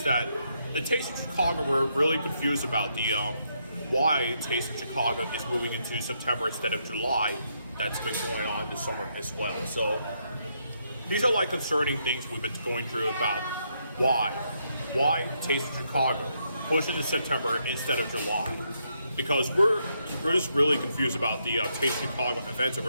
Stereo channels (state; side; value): inverted; both; correlation -0.77